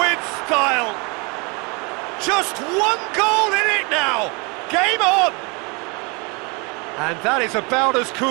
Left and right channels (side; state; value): left; quieter; 30.2 dB